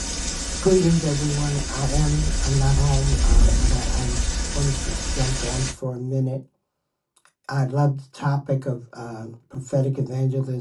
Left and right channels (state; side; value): identical; both; correlation 1.00